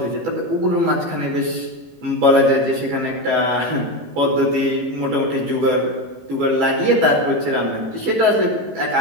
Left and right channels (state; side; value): late; left; 18 ms